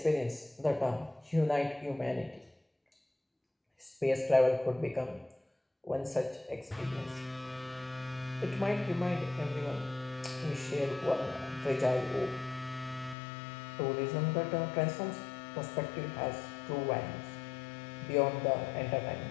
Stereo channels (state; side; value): drops out; right; at 13.2 s